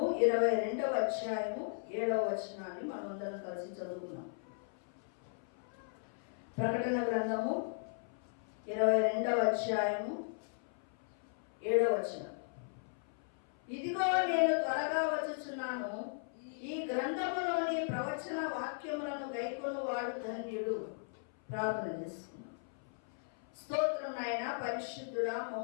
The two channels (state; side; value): silent; right; 53 dB below the other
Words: 22వ అధ్యాయము 7వ వచనాన్ని మనమందరం కలిసి చదువుకున్నాం. ప్రకటన గ్రంథము 22వ అధ్యాయము 7వ వచనం. ఇదిగో నేను త్వరగా వచ్చుచున్నాను, ఈ గ్రంథములోని ప్రవచన వాక్యములను గైకొను వాడు ధన్యుడు. ప్రార్థన చేసుకున్నాం. స్తోత్రం నాయన, పరిశుద్ధుడా,